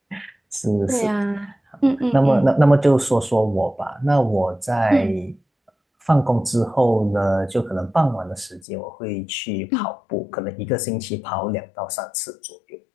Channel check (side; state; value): right; drops out; at 8.6 s